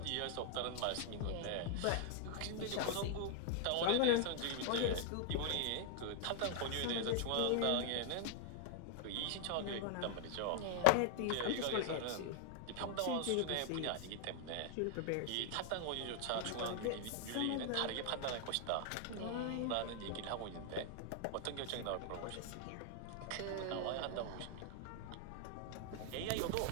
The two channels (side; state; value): both; different; correlation 0.00